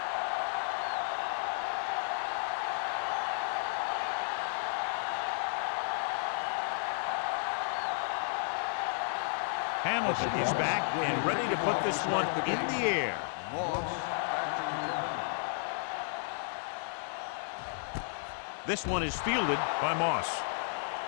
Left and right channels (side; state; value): right; silent; 56 dB below the other